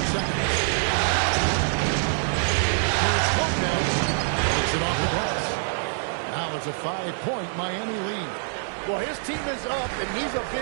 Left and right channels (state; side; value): silent; left; digital silence